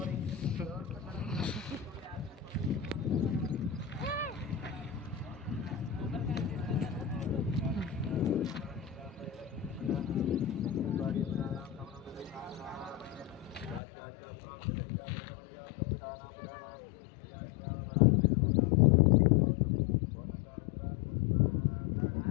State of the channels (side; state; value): right; drops out; at 13.8 s